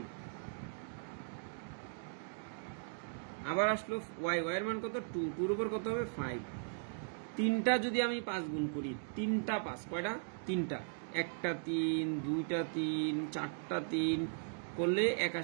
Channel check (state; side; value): silent; left; digital silence